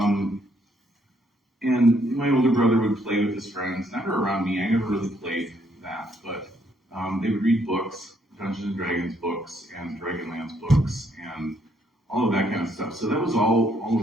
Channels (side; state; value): both; normal; correlation 0.71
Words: And my older brother would play with his friends, never around me. I never really played that, but they would read books, Dungeons and Dragons books, and Dragonlance books, and all of that kind of stuff. So that was all